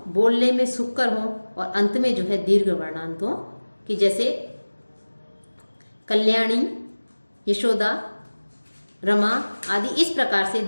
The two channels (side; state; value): both; inverted; correlation -1.00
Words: बोलने में सुखकर हो और अंत में जो है दीर्घ वर्णांत हो। कि जैसे कल्याणी, यशोदा, रमा आदि इस प्रकार से